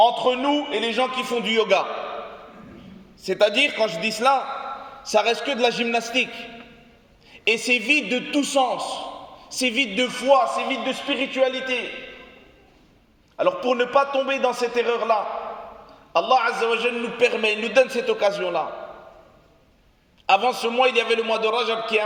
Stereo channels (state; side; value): identical; both; correlation 1.00